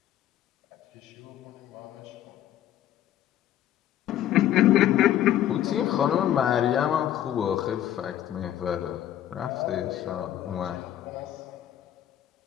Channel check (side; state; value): right; quieter; 11.8 dB